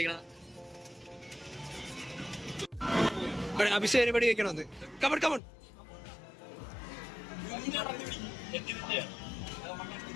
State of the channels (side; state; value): right; drops out; at 5.4 s